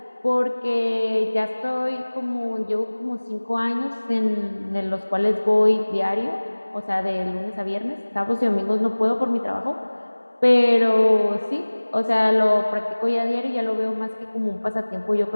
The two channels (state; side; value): inverted; both; correlation -1.00